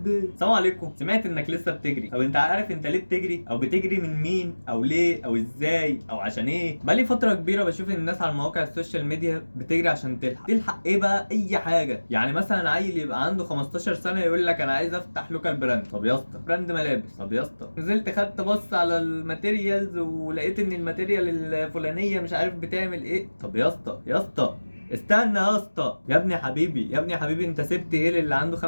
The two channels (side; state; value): both; inverted; correlation -1.00